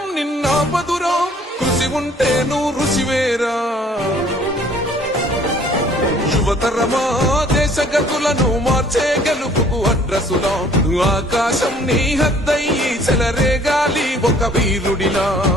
నిన్నాపదురో కృషి ఉంటే నువ్వు రుచివేరా యువతరమా దేశ గతులను మార్చే గెలుపుకు అడ్రసులా ఆకాశం నీ హద్దయ్యి చెలరేగాలి ఒక వీరుడిలా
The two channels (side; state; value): both; normal; correlation 0.56